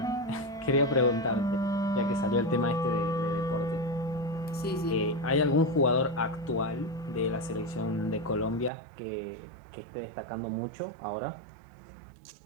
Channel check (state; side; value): drops out; left; at 8.7 s